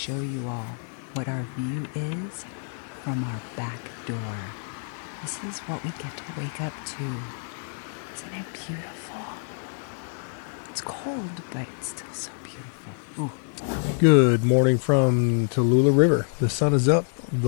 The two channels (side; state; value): right; silent; digital silence